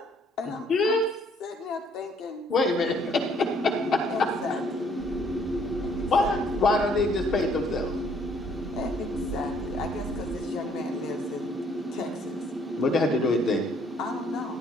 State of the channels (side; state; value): both; normal; correlation 0.64